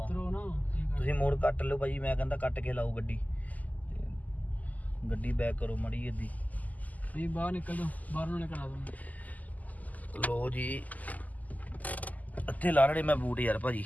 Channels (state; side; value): late; right; 0.079 ms